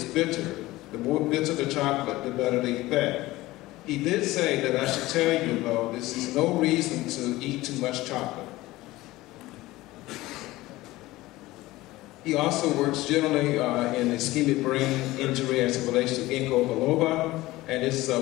bitter, the more bitter the chocolate, the better the effect. He did say that I should tell you, though, this is no reason to eat too much chocolate. He also works generally in ischemic brain injury as it relates to ginkgo biloba, and his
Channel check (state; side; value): quieter; right; 18.3 dB